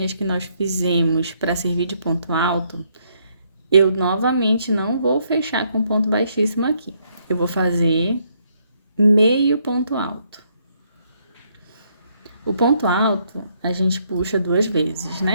que nós fizemos para servir de ponto alto, eu novamente não vou fechar com ponto baixíssimo aqui. Eu vou fazer meio ponto alto. O ponto alto, a gente puxa 2 vezes,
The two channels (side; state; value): both; inverted; correlation -0.72